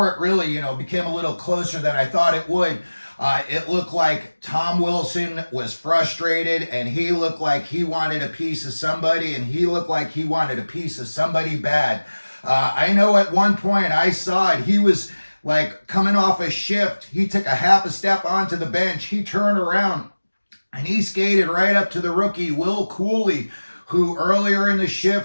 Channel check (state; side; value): inverted; both; correlation -1.00